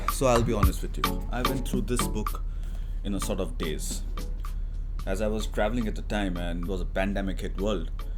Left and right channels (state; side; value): identical; both; correlation 1.00